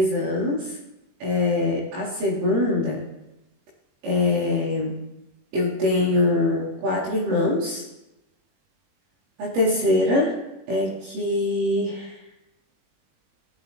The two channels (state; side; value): late; left; 21 ms